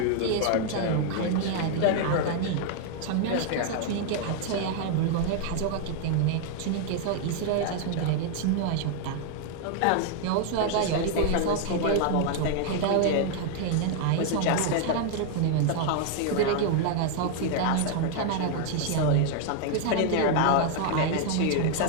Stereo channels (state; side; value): different; both; correlation 0.00